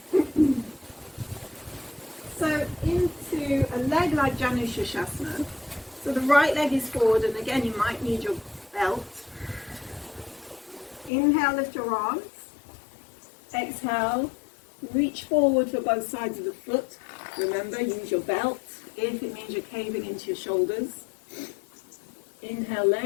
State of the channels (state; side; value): drops out; right; at 11.1 s